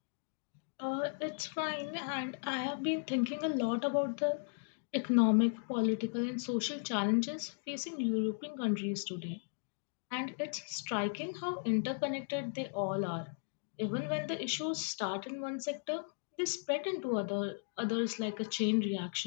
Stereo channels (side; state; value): right; silent; digital silence